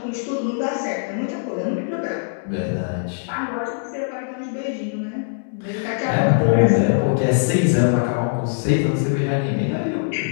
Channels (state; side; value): silent; right; digital silence